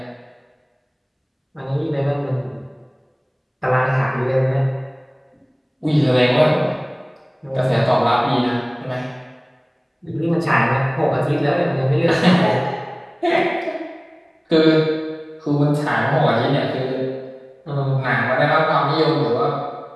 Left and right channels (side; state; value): both; identical; correlation 1.00